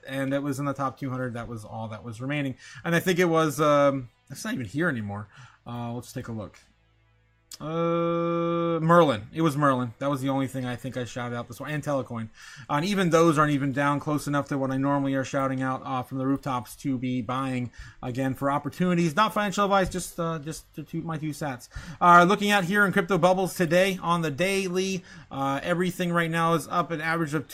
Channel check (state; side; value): identical; both; correlation 1.00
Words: And it was in the top 200. That was all that was remaining. And I think it was, it's not even here anymore. Let's take a look. Merlin. It was Merlin. That was the only thing I think I shouted out this one. And ALTCOIN. And even those aren't even down close enough to what I normally are shouting out from the rooftops to be buying again for opportunities. Not financial advice, just to toot my 2 cents. Looking at here in crypto bubbles today on the daily, everything right now is up an average of